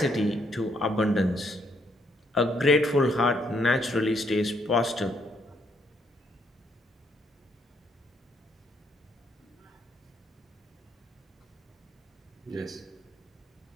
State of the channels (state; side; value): normal; both; correlation 0.72